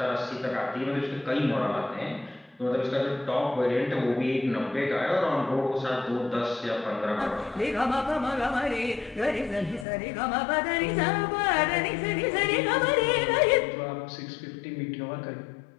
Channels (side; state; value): right; drops out; at 9.9 s